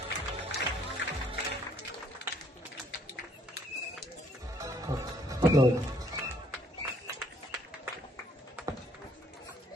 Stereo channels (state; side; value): normal; both; correlation 0.64